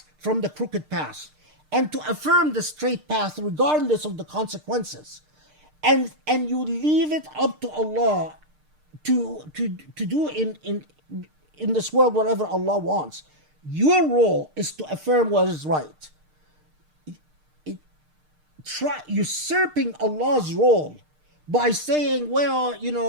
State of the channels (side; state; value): left; late; 6.6 ms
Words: from the crooked path, and to affirm the straight path regardless of the consequences. And you leave it up to Allah to do in this world whatever Allah wants. Your role is to affirm what is right. Usurping Allah's role by saying, well,